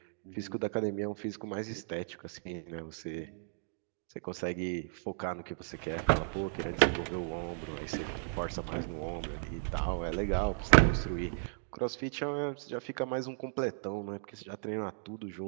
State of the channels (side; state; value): left; silent; digital silence